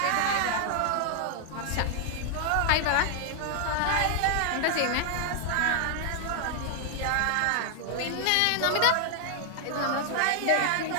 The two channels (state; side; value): different; both; correlation 0.00